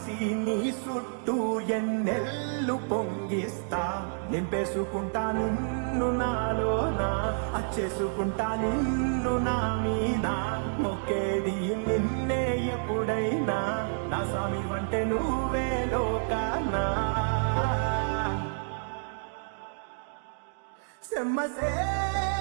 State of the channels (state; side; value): silent; left; digital silence